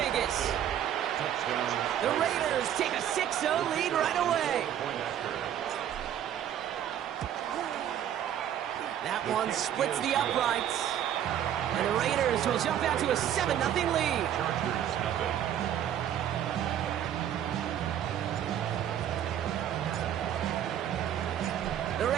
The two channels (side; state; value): left; quieter; 10.4 dB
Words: The Raiders take a 6-0 lead right away. That one splits the uprights. And the Raiders will jump out to a 7-0 lead. The